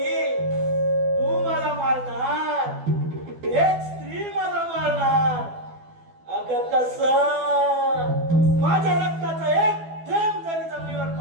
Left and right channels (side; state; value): left; late; 12 ms